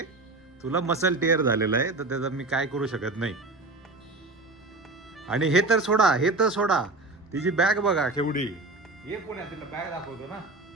तुला मसल टेअर झालेलं आहे तर त्याचा मी काय करू शकत नाही. आणि हे तर सोडा, तिची बॅग बघा केवढी. ये पुण्यात तिला बॅग दाखवतो ना.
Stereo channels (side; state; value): left; quieter; 3.2 dB